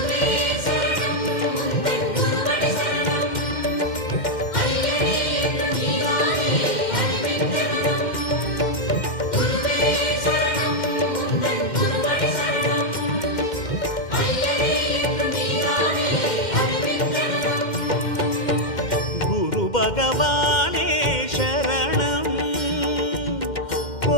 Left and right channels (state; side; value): late; right; 2.1 ms